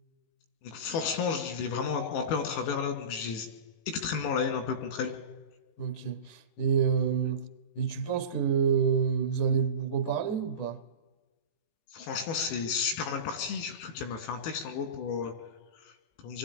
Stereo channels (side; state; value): right; late; 18 ms